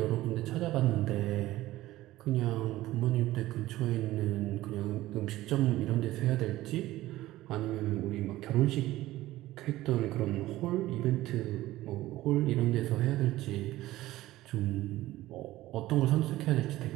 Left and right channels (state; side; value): quieter; left; 16.3 dB